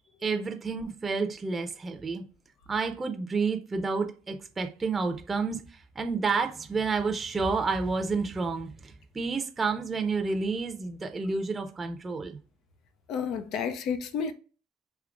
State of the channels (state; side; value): quieter; left; 3.1 dB